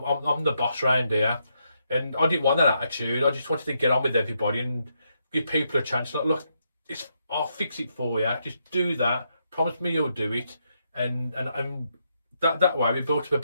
the boss round here. And I didn't want that attitude. I just wanted to get on with everybody and give people a chance. Like, look, I'll fix it for you. Just do that. Promise me you'll do it. And that way we built up a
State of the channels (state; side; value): inverted; both; correlation -0.79